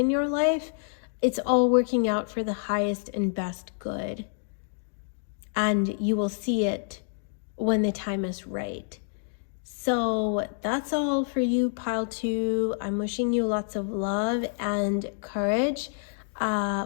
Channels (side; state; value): right; silent; digital silence